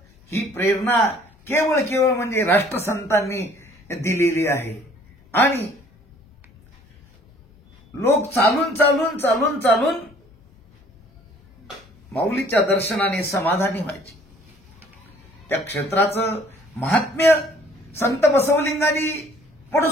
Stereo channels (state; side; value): normal; both; correlation 0.56